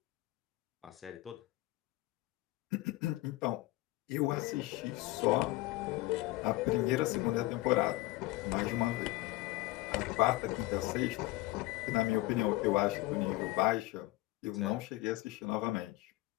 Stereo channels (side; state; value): right; quieter; 18.9 dB